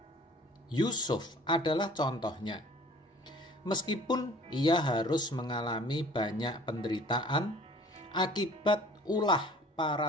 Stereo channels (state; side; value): normal; both; correlation 0.50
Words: Yusuf adalah contohnya. Meskipun ia harus mengalami banyak penderitaan akibat ulah para